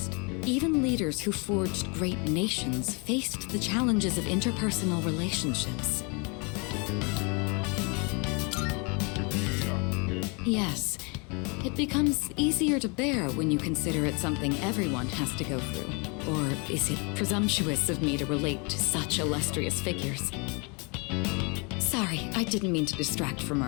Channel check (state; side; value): quieter; right; 32.0 dB